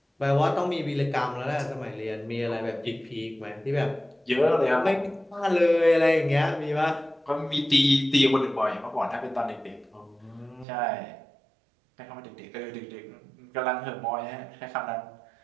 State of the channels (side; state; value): left; drops out; at 10.7 s